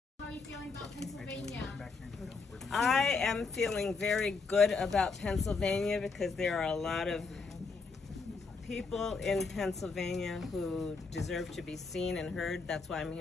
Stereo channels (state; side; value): quieter; right; 4.5 dB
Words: are you feeling about Pennsylvania? I am feeling very good about Pennsylvania because there are a lot of people in Pennsylvania who deserve to be seen and heard. That's why I'm